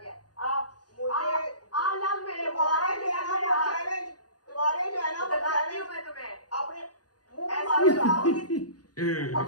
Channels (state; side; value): late; right; 0.69 ms